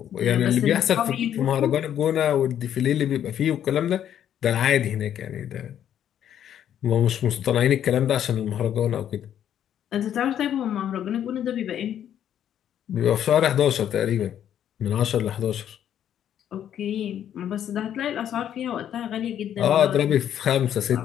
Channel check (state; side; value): quieter; right; 10.1 dB